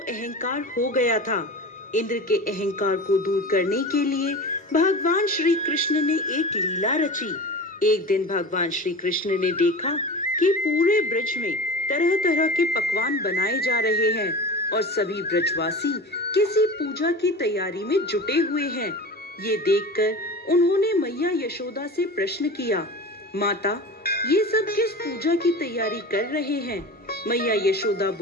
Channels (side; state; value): both; normal; correlation 0.32